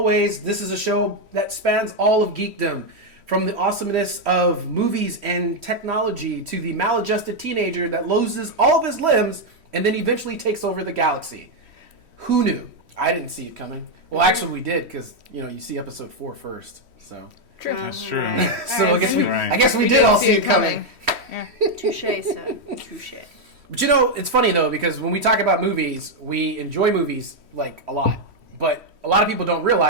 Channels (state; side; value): late; left; 3.1 ms